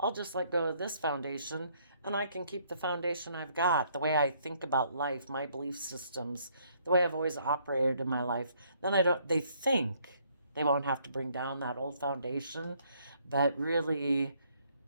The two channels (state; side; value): inverted; both; correlation -0.67